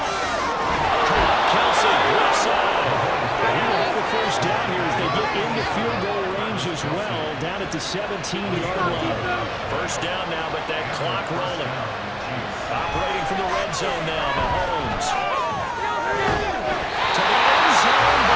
Kelce, left side. And he will have the 1st down here as they get into field goal range as well, down at the 17-yard line. 1st down now, but that clock rolling. Operating from the red zone now, Mahomes. To the end zone,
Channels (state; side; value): identical; both; correlation 1.00